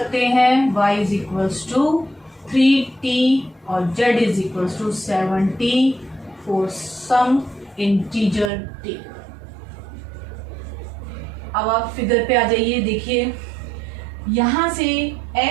हैं y is equals to 3t और z is equals to 7t for some integer t। अब आप फिगर पे आ जाइए। देखिए यहाँ से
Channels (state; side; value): drops out; left; at 8.5 s